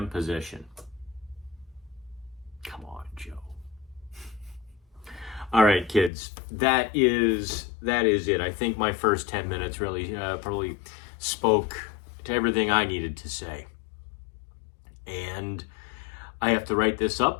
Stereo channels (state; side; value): drops out; right; at 6.1 s